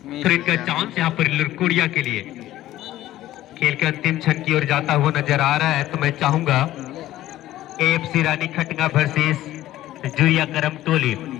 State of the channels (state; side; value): quieter; right; 14.5 dB